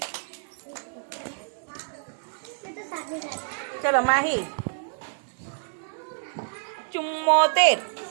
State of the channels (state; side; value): silent; left; 57 dB below the other